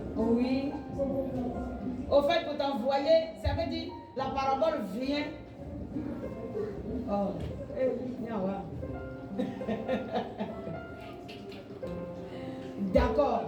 Oui. Au fait, pour t'envoyer, ça veut dire la parabole vient. Oh. D'accord.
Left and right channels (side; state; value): both; identical; correlation 1.00